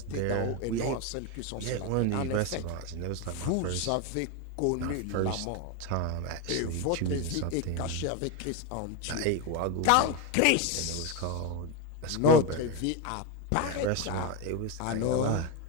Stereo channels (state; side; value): different; both; correlation 0.03